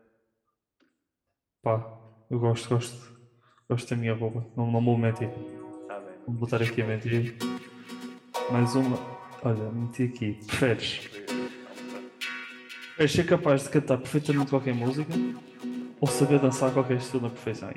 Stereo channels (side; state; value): both; identical; correlation 1.00